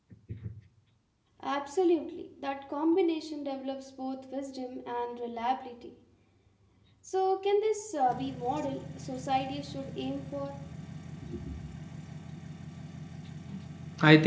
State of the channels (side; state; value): both; identical; correlation 1.00